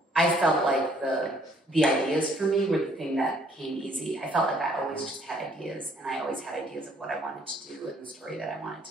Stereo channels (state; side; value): normal; both; correlation 0.63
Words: I felt like the ideas for me were the thing that came easy. I felt like I always just had ideas, and I always had ideas of what I wanted to do and the story that I wanted